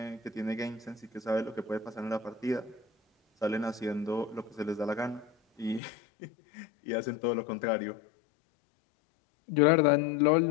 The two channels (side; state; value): right; drops out; at 5.8 s